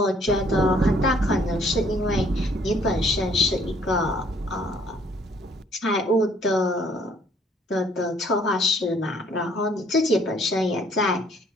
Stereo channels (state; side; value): normal; both; correlation 0.62